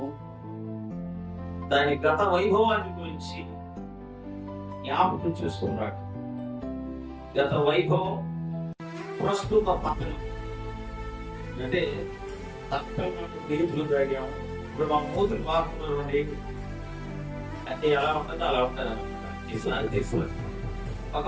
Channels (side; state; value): both; identical; correlation 1.00